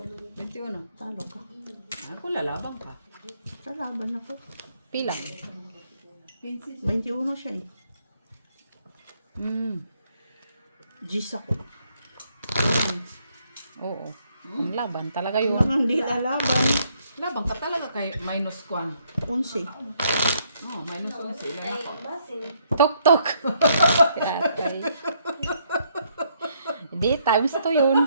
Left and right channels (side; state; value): both; inverted; correlation -0.71